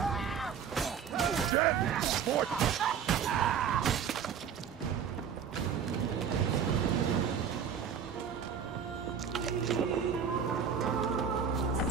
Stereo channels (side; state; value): left; quieter; 7.5 dB